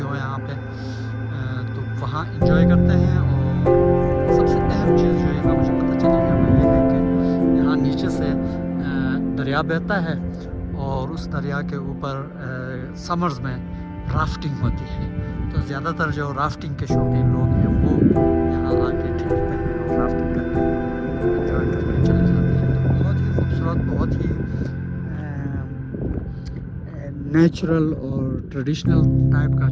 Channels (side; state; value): both; identical; correlation 1.00